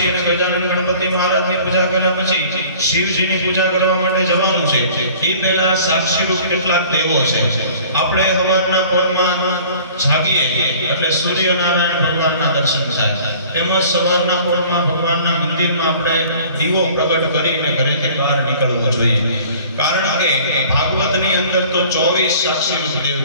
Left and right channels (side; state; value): both; inverted; correlation -0.49